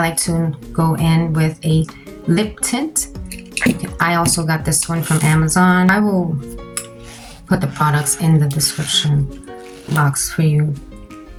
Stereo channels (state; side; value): identical; both; correlation 1.00